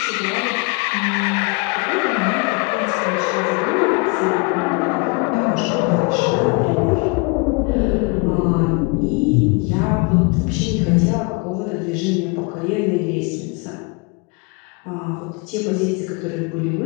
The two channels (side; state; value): right; quieter; 30.8 dB